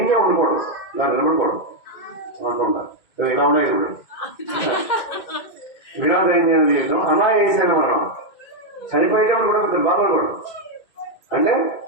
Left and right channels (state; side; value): late; right; 2.1 ms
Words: ఉండకూడదు. నాకు నిలబడకూడదు అనుకుంటా. ఇలా ఉన్నాయి ఇప్పుడు. వినా దైన్యమైన జీవితం అనాయాసైన మరణం. చనిపోయేటప్పుడు కూడా కొంచెం బాధపడకూడదు. అంటే